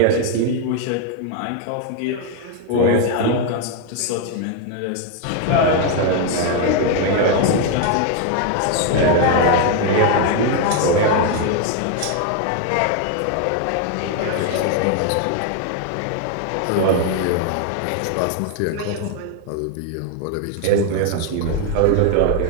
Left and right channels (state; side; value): different; both; correlation 0.01